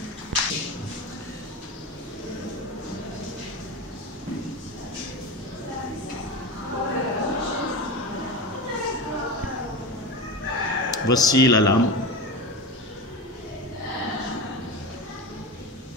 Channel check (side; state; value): both; normal; correlation 0.24